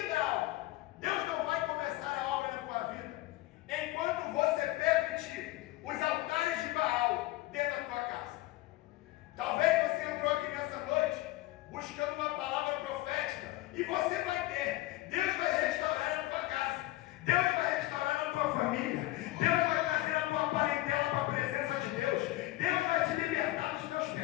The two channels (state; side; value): quieter; right; 17.7 dB